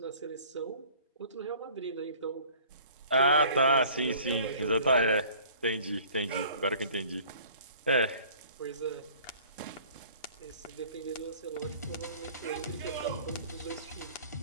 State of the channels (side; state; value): both; inverted; correlation -0.51